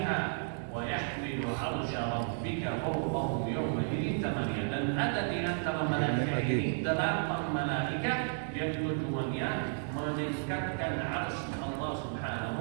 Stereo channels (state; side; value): silent; left; digital silence